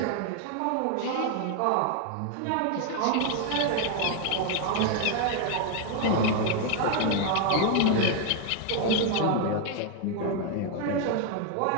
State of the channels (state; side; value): different; both; correlation 0.01